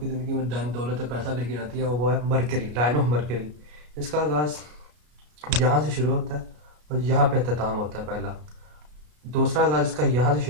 ज़िंदगी में धन दौलत और पैसा लेके आती है वो है मरकरी, लाइन ऑफ मरकरी। इसका आगाज़ यहाँ से शुरू होता है और यहाँ पे अख्ताम होता है पहला। दूसरा आगाज़ इसका यहाँ से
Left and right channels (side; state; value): left; late; 33 ms